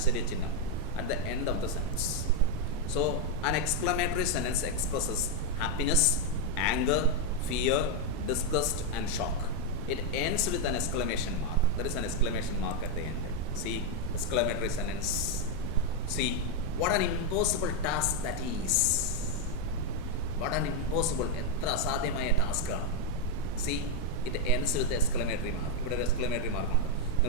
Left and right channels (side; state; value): both; normal; correlation 0.02